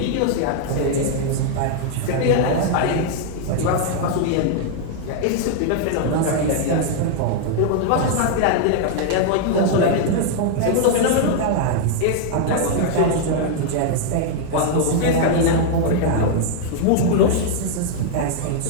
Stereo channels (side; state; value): both; different; correlation -0.01